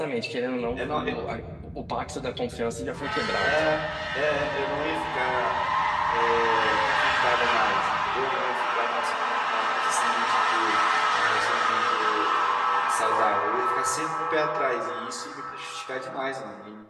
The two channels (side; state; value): both; identical; correlation 1.00